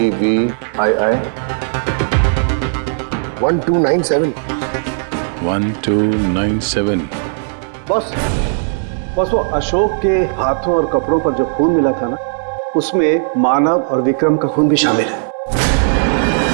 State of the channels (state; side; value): silent; left; 59 dB below the other